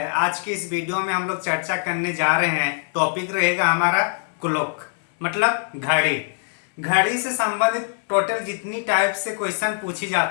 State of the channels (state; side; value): silent; right; 64 dB below the other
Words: आज की इस वीडियो में हम लोग चर्चा करने जा रहे हैं। टॉपिक रहेगा हमारा क्लॉक, मतलब घड़ी। घड़ी से संबंधित टोटल जितनी टाइप से क्वेश्चन पूछी